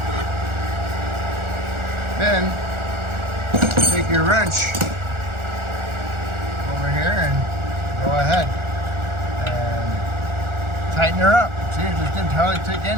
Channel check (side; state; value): left; late; 1.4 ms